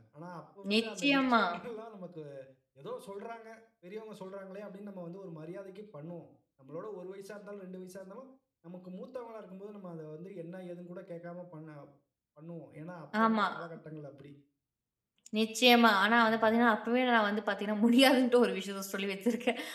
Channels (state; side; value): identical; both; correlation 1.00